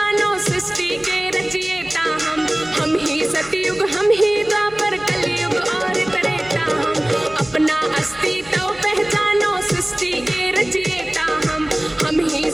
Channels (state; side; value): noise; right; hum, 24 dB below the sound